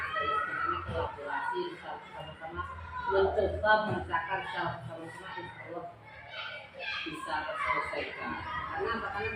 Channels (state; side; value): identical; both; correlation 1.00